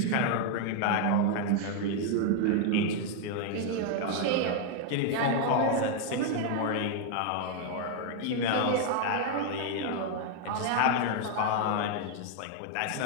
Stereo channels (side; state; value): both; different; correlation 0.00